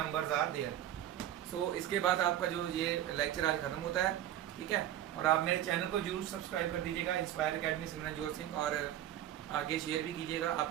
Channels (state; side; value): quieter; left; 12.0 dB